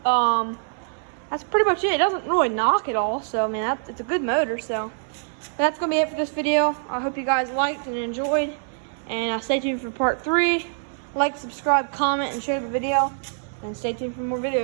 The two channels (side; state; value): left; silent; 62 dB below the other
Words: That's pretty much it. It doesn't really knock at all, so I mean it's a good motor. So that's gonna be it for this video. I hope you guys liked and enjoyed, and stay tuned for part 3. Like, subscribe, comment, and share the video, and stay tuned for more